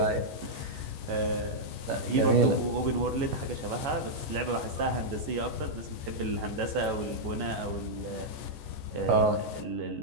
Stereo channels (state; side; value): late; left; 14 ms